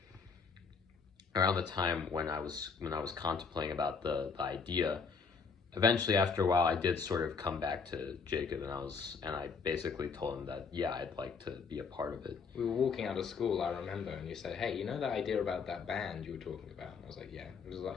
around the time when I was contemplating about the idea, eventually after a while I did sort of come back to Jacob, and I basically told him that I'd like to be a part of it. We were walking out of school, I remember, and you said, "Hey, that idea about that band you were talking about?" And I was like, "Yeah." It was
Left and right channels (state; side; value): quieter; right; 5.3 dB